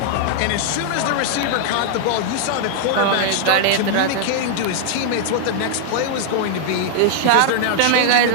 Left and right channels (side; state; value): both; different; correlation -0.01